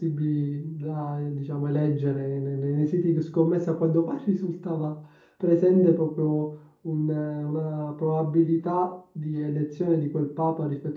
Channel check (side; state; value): both; identical; correlation 1.00